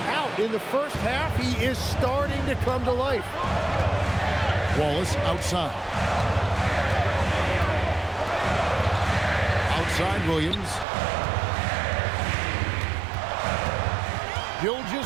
out in the first half, he is starting to come to life. Wallace outside. Outside Williams.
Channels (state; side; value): drops out; left; at 10.9 s